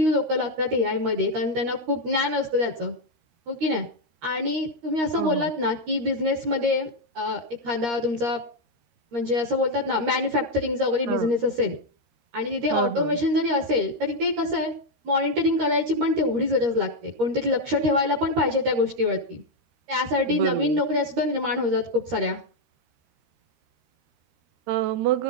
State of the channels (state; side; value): late; left; 13 ms